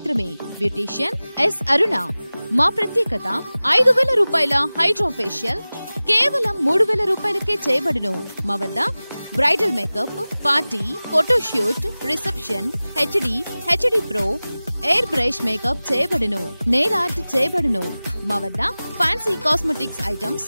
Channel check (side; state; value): both; inverted; correlation -0.98